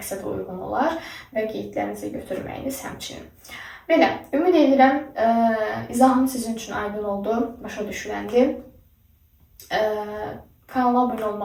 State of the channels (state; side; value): identical; both; correlation 1.00